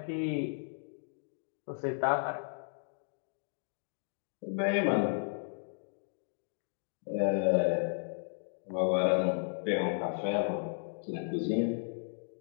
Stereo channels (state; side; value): silent; right; digital silence